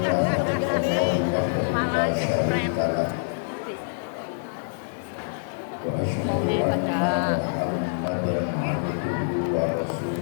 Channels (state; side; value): silent; right; digital silence